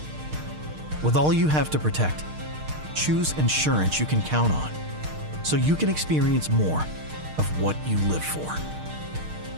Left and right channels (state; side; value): late; left; 6.5 ms